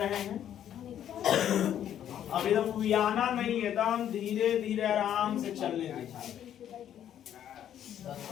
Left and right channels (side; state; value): right; quieter; 10.4 dB